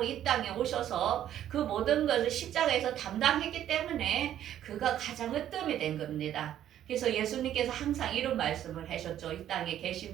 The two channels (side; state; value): left; quieter; 11.3 dB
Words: 이 땅에 오셔서 그 모든 것을 십자가에서 담당했기 때문에 그가 가장 으뜸이 된 겁니다. 그래서 예수님께서 항상 이런 말씀을 하셨죠. 이 땅에